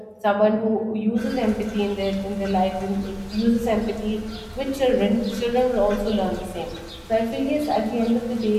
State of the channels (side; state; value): both; identical; correlation 1.00